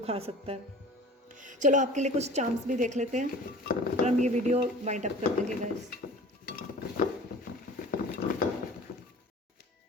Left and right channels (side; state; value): both; normal; correlation 0.42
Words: सकता है। चलो आपके लिए कुछ चांस भी देख लेते हैं और हम ये वीडियो वाइंड अप कर देंगे guys.